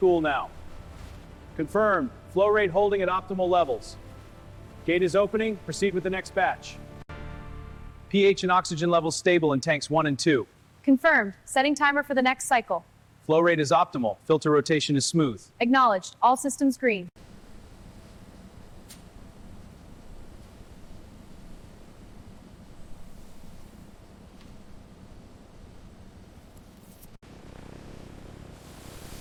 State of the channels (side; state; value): both; identical; correlation 1.00